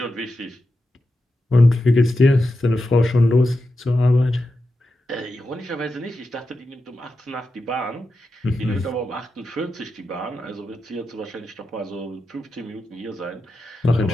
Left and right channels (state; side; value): normal; both; correlation 0.89